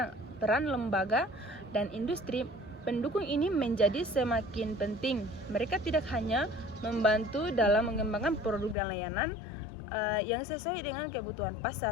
peran lembaga dan industri pendukung ini menjadi semakin penting. Mereka tidak hanya membantu dalam mengembangkan produk dan layanan yang sesuai dengan kebutuhan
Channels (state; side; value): drops out; right; at 8.8 s